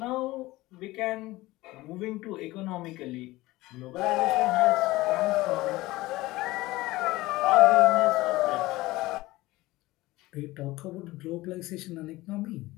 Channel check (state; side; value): quieter; right; 19.0 dB